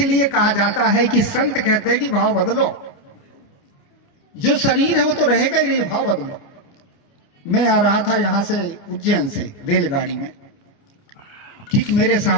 कहा जाता है कि संत कहते हैं कि भाव बदलो। जो शरीर है वो तो रहेगा ही नहीं, भाव बदलो। मैं आ रहा था यहां से उज्जैन से रेलगाड़ी में, ठीक मेरे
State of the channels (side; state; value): right; late; 29 ms